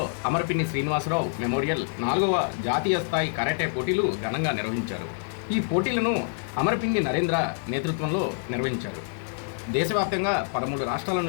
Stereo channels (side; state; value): right; silent; digital silence